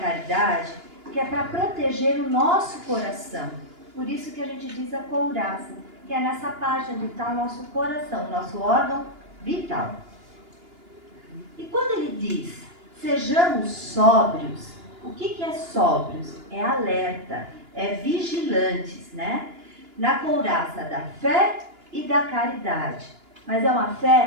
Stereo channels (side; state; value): left; late; 2.9 ms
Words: que é para proteger o nosso coração. Por isso que a gente diz a couraça, que é nessa parte onde está o nosso coração, o nosso órgão vital. E quando ele diz, sejamos sóbrios, o que é sóbrios? É alerta, é vigilantes, na couraça da fé e da caridade. Mas é uma